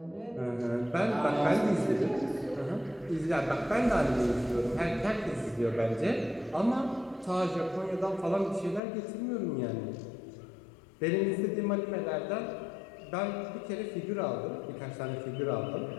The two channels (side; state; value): right; drops out; at 8.8 s